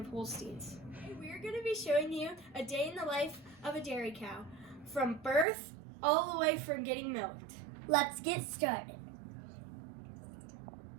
Holsteins. We're going to be showing you a day in the life of a dairy cow, from birth all the way from getting milked. let's get started.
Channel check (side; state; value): left; drops out; at 5.5 s